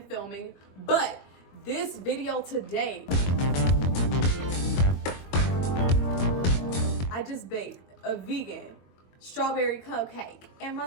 but this video today, I just baked a vegan strawberry cupcake, and my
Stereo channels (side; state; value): right; late; 22 ms